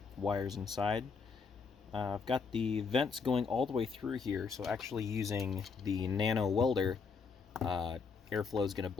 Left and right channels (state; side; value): quieter; right; 5.2 dB